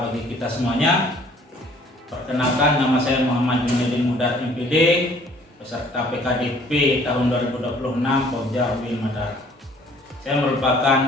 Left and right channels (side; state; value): both; normal; correlation 0.56